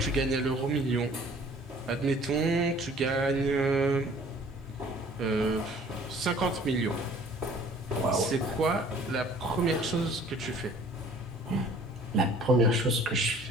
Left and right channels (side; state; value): both; normal; correlation 0.53